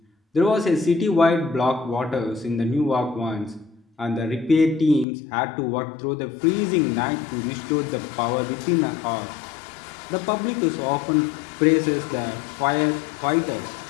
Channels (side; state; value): right; drops out; at 5.1 s